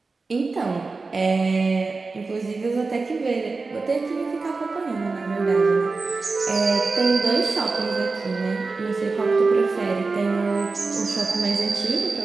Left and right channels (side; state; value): left; quieter; 4.0 dB